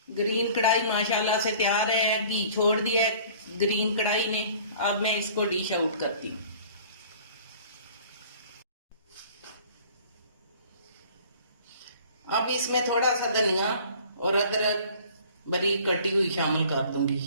ग्रीन कढ़ाई माशाल्लाह से तैयार है, घी छोड़ दिया है ग्रीन कढ़ाई ने। अब मैं इसको डिश आउट करती हूँ। अब इसमें थोड़ा सा धनिया और अदरक बारीक कटी हुई शामिल कर दूंगी।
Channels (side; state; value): both; inverted; correlation -0.49